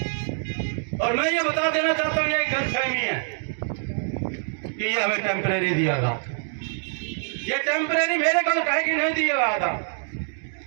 और मैं ये बता देना चाहता हूँ, ये एक गलतफहमी है कि ये हमें टेम्परेरी दिया था। ये टेम्परेरी मेरे को कहे कि नहीं दिया गया था,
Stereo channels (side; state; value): left; silent; digital silence